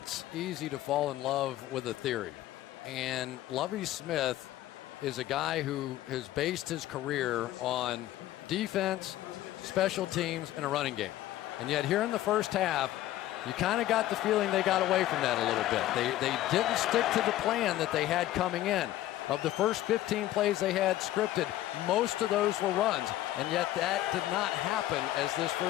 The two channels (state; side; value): quieter; right; 14.4 dB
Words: easy to fall in love with a theory. And Lovie Smith is a guy who has based his career on defense, special teams, and a running game. And yet here in the first half, you kind of got the feeling they got away from that a little bit. They didn't stick to the plan that they had coming in. Of the first 15 plays they had scripted, most of those were runs, and yet that did not happen as this